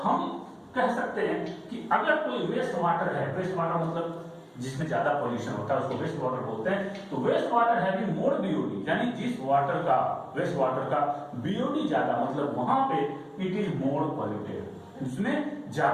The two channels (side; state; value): both; identical; correlation 1.00